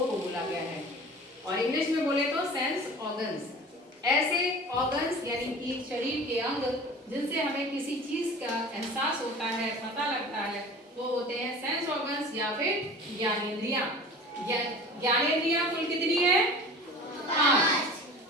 को बोला गया है, और इंग्लिश में बोले तो सेंस ऑर्गन्स। ऐसे ऑर्गन्स यानी कि शरीर के अंग जिनसे हमें किसी चीज का एहसास होता है, पता लगता है, वो होते हैं सेंस ऑर्गन्स या फिर ज्ञानेंद्रियां। ज्ञानेंद्रियां कुल कितनी है? 5।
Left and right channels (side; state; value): both; normal; correlation 0.40